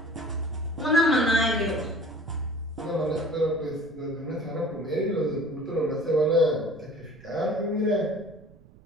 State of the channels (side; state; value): right; noise; rumble, 24 dB below the sound